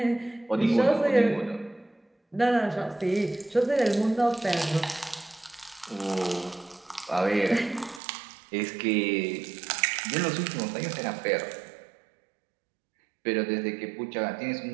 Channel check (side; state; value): left; drops out; at 8.0 s